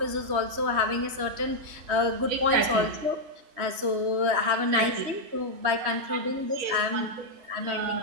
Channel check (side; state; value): left; late; 3.2 ms